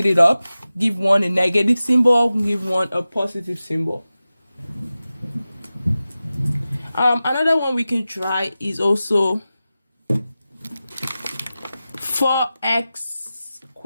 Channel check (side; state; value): both; inverted; correlation -0.95